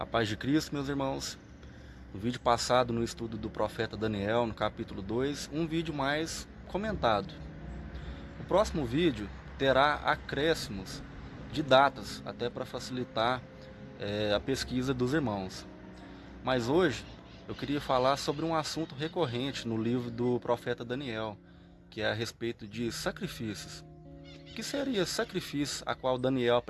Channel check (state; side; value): identical; both; correlation 1.00